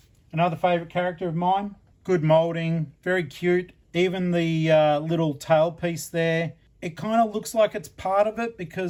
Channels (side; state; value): both; identical; correlation 1.00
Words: another favourite character of mine. Good moulding, very cute. Even the little tail piece there. It kind of looks like it's part of it,